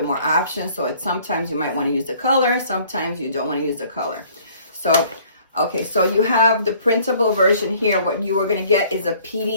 more options. So sometimes you might want to use the color, sometimes you don't want to use the color. So okay, so you have the printable version here. What you are going to get is a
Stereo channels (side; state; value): both; inverted; correlation -0.57